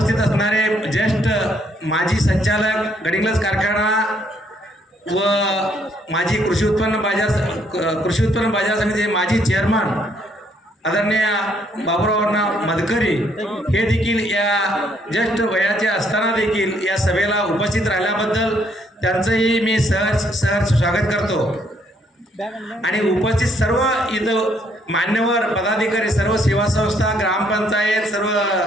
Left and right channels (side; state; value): both; normal; correlation 0.69